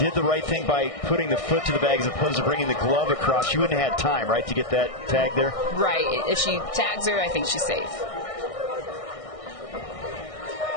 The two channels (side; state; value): right; late; 1.6 ms